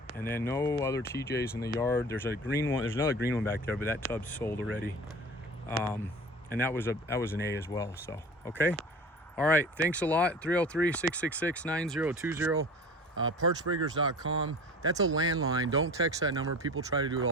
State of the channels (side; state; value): both; normal; correlation 0.38